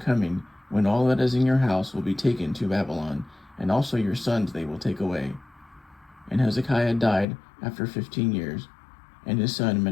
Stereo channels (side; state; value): right; drops out; at 7.2 s